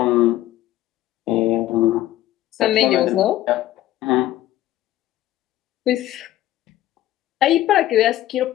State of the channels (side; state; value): right; quieter; 14.2 dB